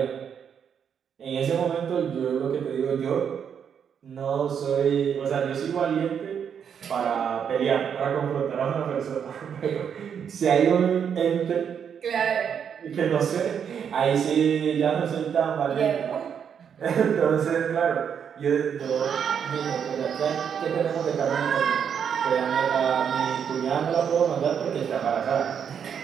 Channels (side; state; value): left; quieter; 7.7 dB